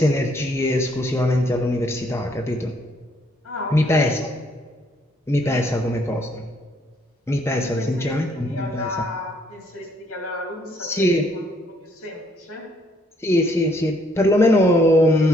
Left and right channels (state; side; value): normal; both; correlation 0.67